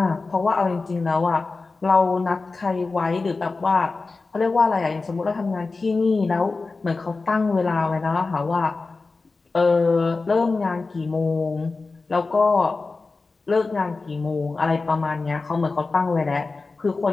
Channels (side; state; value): right; quieter; 3.8 dB